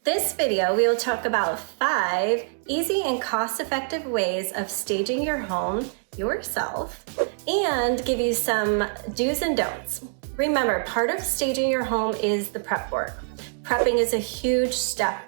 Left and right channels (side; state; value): left; silent; digital silence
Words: This video, we will talk about 5 easy and cost-effective ways of staging your home yourself and give you some do's and don'ts. Remember, part of staging your home is the prep work. Prepping is a huge step